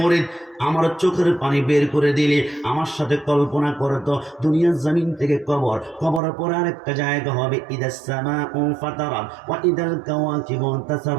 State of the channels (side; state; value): left; drops out; at 6.2 s